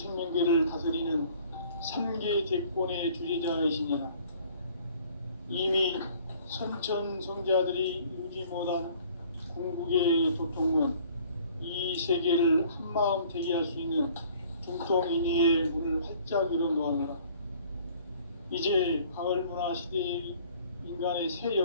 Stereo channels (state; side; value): inverted; both; correlation -0.54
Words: 다스리는 3개 대권의 주재자이시니라. 이미 선천성자들이 이루지 못한 궁극의 도통문, 이 세계를 한마음 되게 할 수 있는 중통인의의 문을 활짝 열어놓았노라. 이제 가을문화 시대의 인간의 새